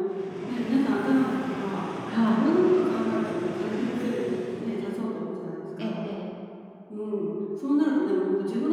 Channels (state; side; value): identical; both; correlation 1.00